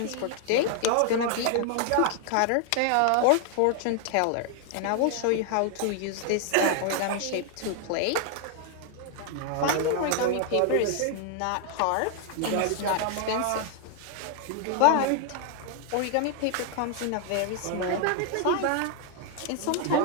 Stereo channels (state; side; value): different; both; correlation 0.00